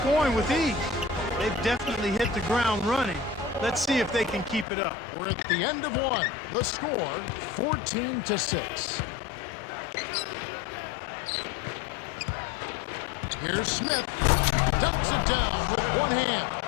with ease. They've definitely hit the ground running. Let's see if they can keep it up. We're at the end of one. The score, 14-6. Here's Smith. Dunks it down with one hand.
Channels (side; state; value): right; drops out; at 4.7 s